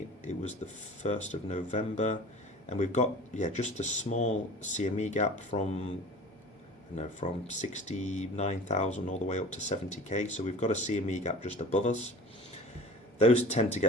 it was the 1st of November, and we've got just a small CME gap from 69,000 all the way up to 70k. So we've got a CME gap just above us. Those tend to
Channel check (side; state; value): both; normal; correlation 0.40